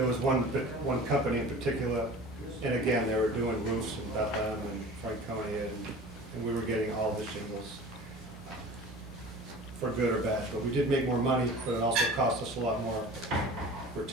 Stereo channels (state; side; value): normal; both; correlation 0.40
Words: was one company in particular, and again, they were doing roofs in Bethlehem and Franconia, and we were getting all the shingles for good or bad. But we did make more money, but it also cost us a lot more for